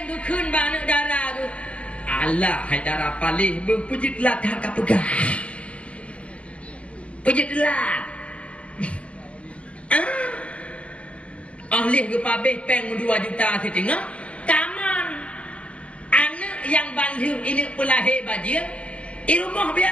ke keun ba anak darah tu Allah hai darah paling berpujit lat ka pegah pujit lat ahli ke pabeh peng 2 juta setengah taman anak yang balik ini pelahir bajir ilmu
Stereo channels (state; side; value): late; right; 0.062 ms